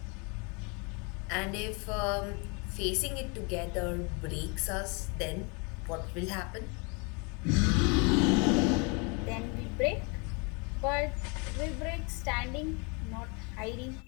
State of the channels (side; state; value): right; quieter; 32.3 dB